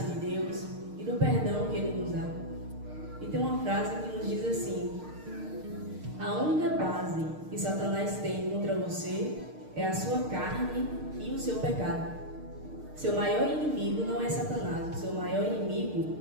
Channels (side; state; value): left; late; 6.5 ms